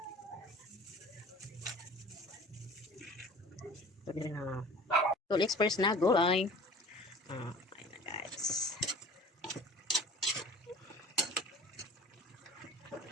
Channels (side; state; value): both; normal; correlation 0.43